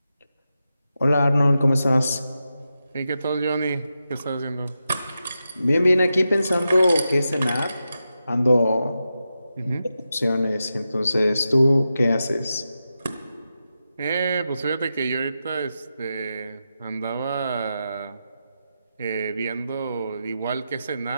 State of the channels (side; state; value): both; inverted; correlation -0.89